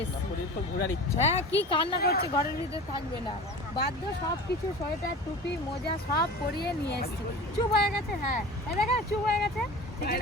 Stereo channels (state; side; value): normal; both; correlation 0.36